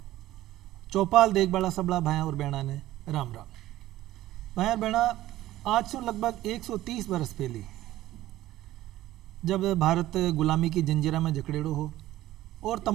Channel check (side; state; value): left; quieter; 15.1 dB